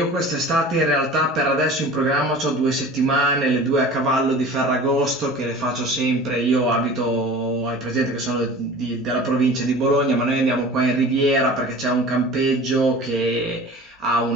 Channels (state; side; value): normal; both; correlation 0.40